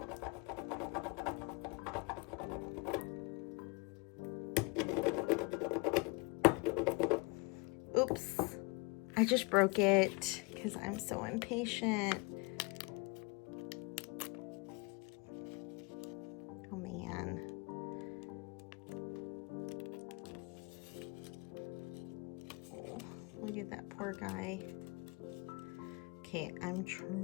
Oops, I just broke it because I'm so impatient. Oh man. Oh, look at that poor guy. Okay, I'm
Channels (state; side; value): quieter; right; 29.2 dB